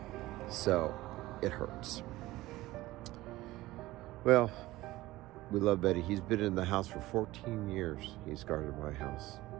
So it hurts. Well, we love Betty. He's been in the house for 14 years. He's guarded my house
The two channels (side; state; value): left; quieter; 17.8 dB